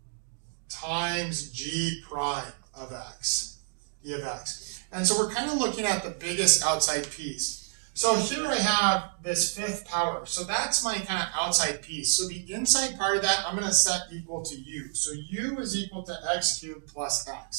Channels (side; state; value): left; silent; digital silence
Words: times g prime of x, e of x. And so we're kind of looking at the biggest outside piece. So here I have this 5th power. So that's my kind of outside piece. So the inside part of that I'm going to set equal to u. So u is equal to x cubed plus x.